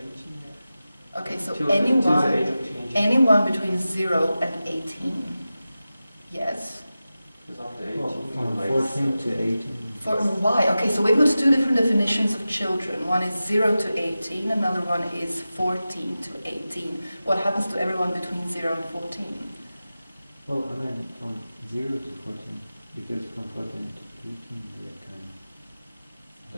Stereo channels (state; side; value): inverted; both; correlation -0.94